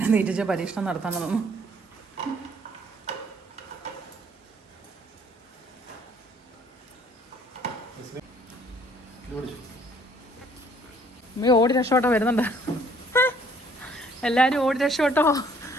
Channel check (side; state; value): both; normal; correlation 0.60